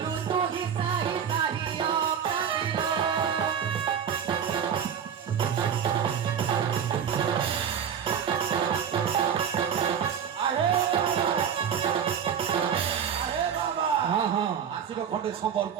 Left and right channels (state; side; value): quieter; left; 7.9 dB